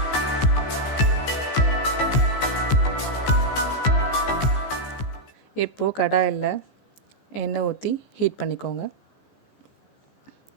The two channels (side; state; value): right; late; 15 ms